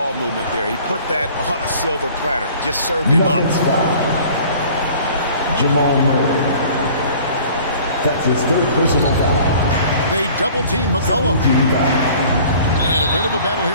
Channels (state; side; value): inverted; both; correlation -0.49